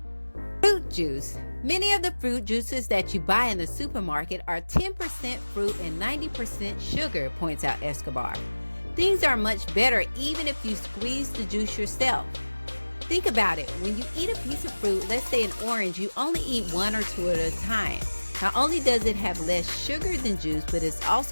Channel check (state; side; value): inverted; both; correlation -1.00